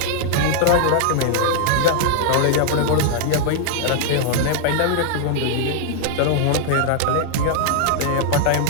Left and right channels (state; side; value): different; both; correlation 0.00